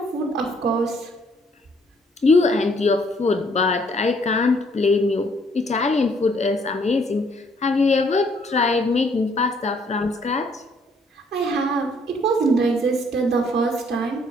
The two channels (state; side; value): normal; both; correlation 0.65